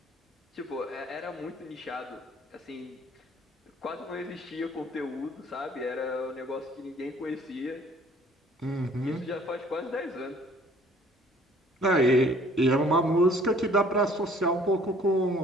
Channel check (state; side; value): normal; both; correlation 0.56